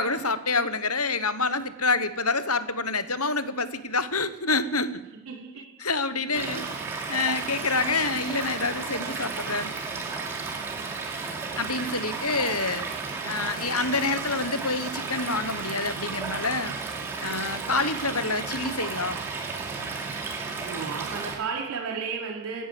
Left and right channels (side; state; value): both; normal; correlation -0.14